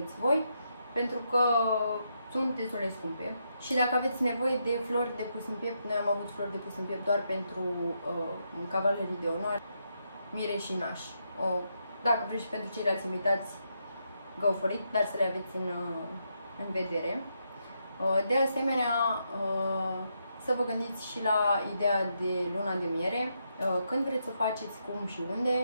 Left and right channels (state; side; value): inverted; both; correlation -0.80